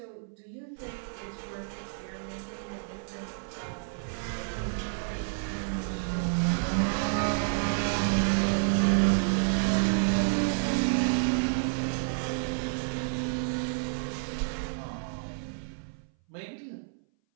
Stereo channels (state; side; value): silent; left; 58 dB below the other